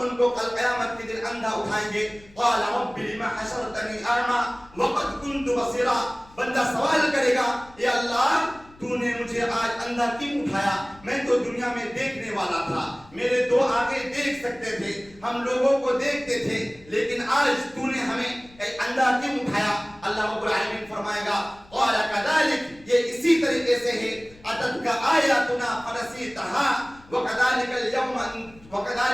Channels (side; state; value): left; noise; rumble, 25 dB below the sound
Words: کو کل قیامت کے دن اندھا اٹھائیں گے. قال رب لم حشرتنی اعمى وقد كنت بصيرا، بندہ سوال کرے گا اے اللہ تو نے مجھے آج اندھا کیوں اٹھایا؟ میں تو دنیا میں دیکھنے والا تھا، میرے دو آنکھیں دیکھ سکتے تھے، ہم لوگوں کو دیکھتے تھے، لیکن آج تو نے ہمیں اندھا کیوں اٹھایا؟ اللہ رب العالمین فرمائے گا قال كذلك، یہ اسی طریقے سے ہے اتتک آیاتنا فنسیتها وَكَذَلِكَ